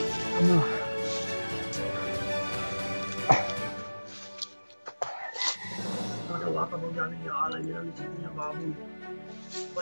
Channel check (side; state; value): both; inverted; correlation -1.00